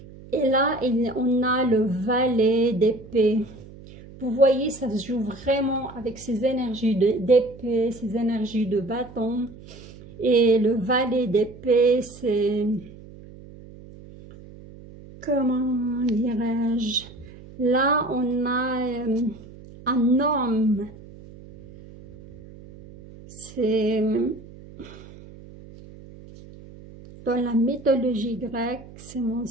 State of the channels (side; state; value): right; noise; hum, 19 dB below the sound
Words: Et là, on a le valet d'épée. Vous voyez, ça se joue vraiment avec ces énergies d'épée, ces énergies de bâton. Et le valet d'épée, c'est, comment dirais-je, là, on a un homme. C'est dans la mythologie grecque, si mon